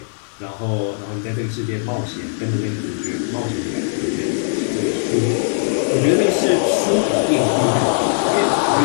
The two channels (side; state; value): right; silent; digital silence